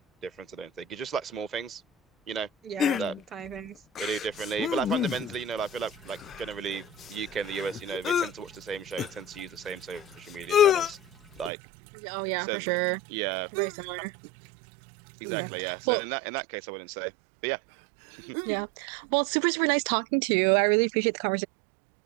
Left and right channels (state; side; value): drops out; left; at 11.5 s